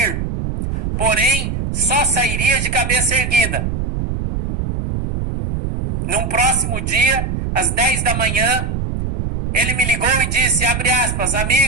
porém só sairia de cabeça erguida. Num próximo dia, às 10 da manhã, ele me ligou e disse, abre aspas,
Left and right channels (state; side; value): noise; right; rumble, 3 dB below the sound